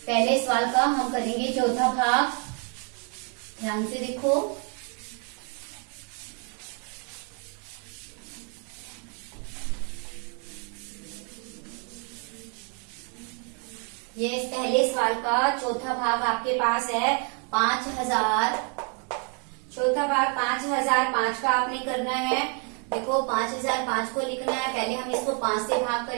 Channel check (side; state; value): left; quieter; 38.3 dB